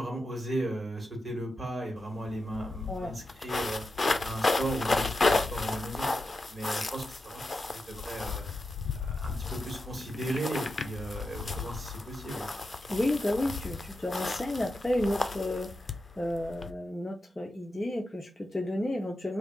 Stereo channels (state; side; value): normal; both; correlation 0.89